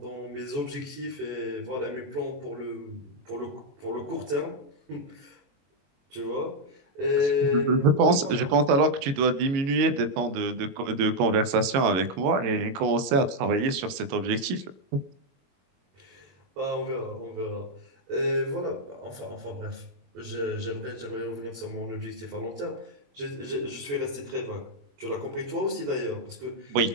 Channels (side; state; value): left; late; 22 ms